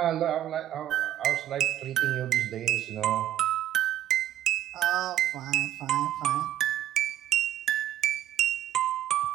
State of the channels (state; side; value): quieter; left; 12.0 dB